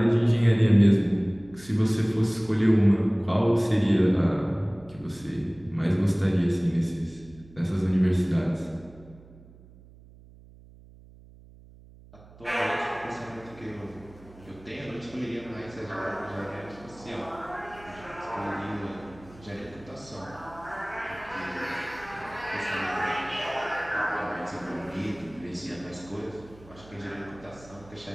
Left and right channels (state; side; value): noise; right; hum, 22 dB below the sound